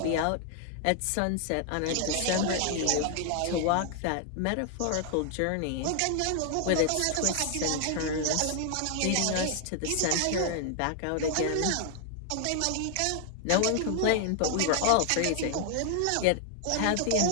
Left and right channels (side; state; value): both; different; correlation 0.00